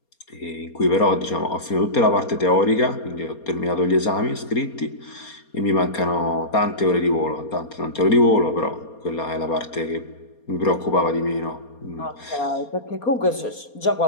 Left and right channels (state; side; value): late; right; 4.3 ms